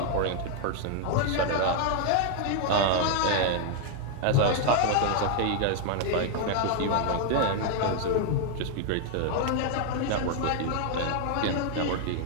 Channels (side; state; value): both; different; correlation 0.00